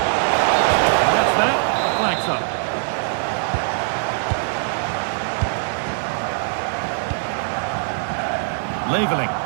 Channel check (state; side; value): silent; left; digital silence